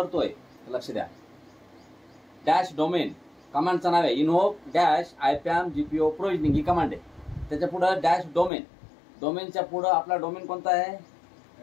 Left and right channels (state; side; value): drops out; right; at 8.5 s